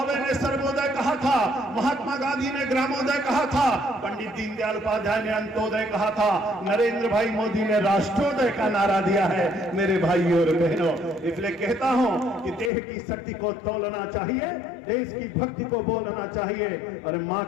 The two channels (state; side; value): drops out; right; at 12.7 s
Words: ने सर्वोदय कहा था, महात्मा गांधी ने ग्रामोदय कहा था, पंडित दीनदयाल उपाध्याय ने अंत्योदय कहा था, नरेंद्र भाई मोदी ने राष्ट्रोदय का नारा दिया है मेरे भाई और बहनों। इसलिए कहता हूं कि देह की शक्ति को तोलना चाहिए, देश की भक्ति को बोलना चाहिए। और माँ